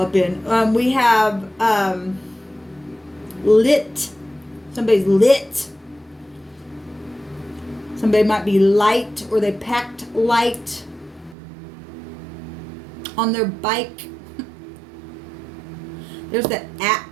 up in. We have lit. Somebody's lit. Somebody might be light, or they packed light on their bike. There's that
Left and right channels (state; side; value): drops out; left; at 11.4 s